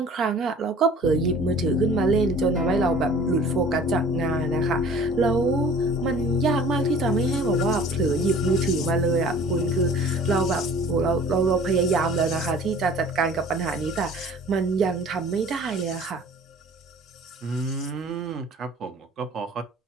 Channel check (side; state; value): both; normal; correlation 0.47